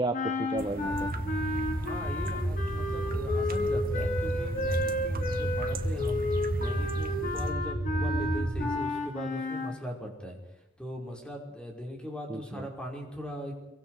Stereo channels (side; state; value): both; normal; correlation 0.67